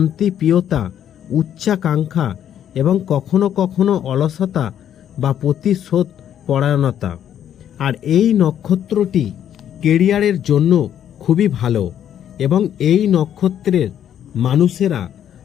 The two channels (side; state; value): right; quieter; 10.0 dB